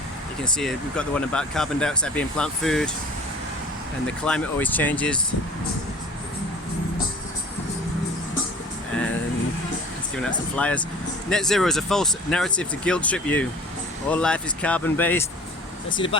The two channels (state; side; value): normal; both; correlation 0.44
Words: you can see we've got the one about carbon dioxide being plant food and the climate always changes, and it's giving out some flyers. Net zero is a false narrative to guilt trip you. All life is carbon based. Let's see the